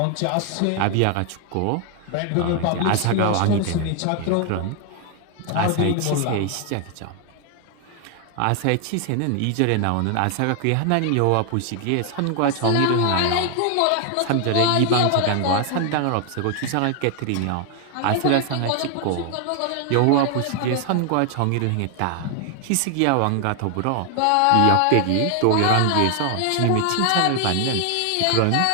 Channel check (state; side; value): different; both; correlation 0.00